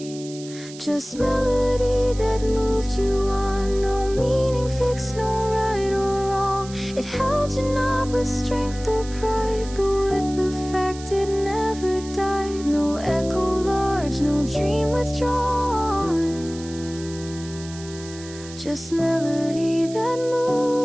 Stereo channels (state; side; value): noise; right; hiss, 16 dB below the sound